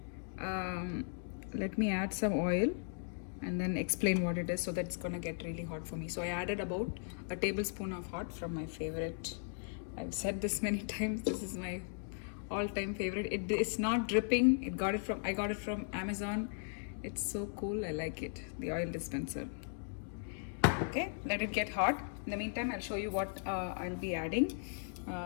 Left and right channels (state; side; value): silent; right; digital silence